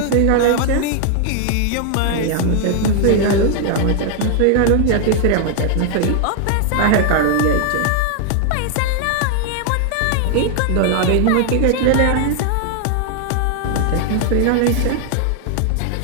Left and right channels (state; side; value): different; both; correlation 0.00